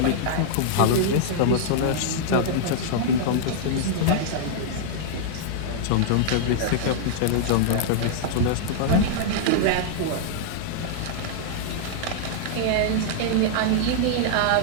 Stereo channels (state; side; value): different; both; correlation -0.01